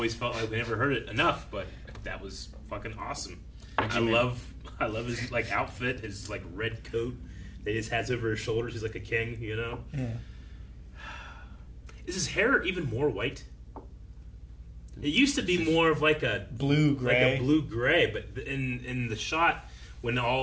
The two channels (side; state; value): both; identical; correlation 1.00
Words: felt like we never heard it enough. But that was fucking awesome. I you love his like outfit, his like red coat that he just has over his shoulders. He's like a king, you know. Yeah. Is his hair even more white? It used to be more of like a Blue, gray. like a blue gray, but in the shot when